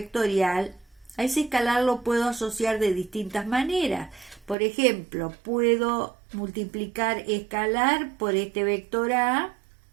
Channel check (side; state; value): left; drops out; at 4.5 s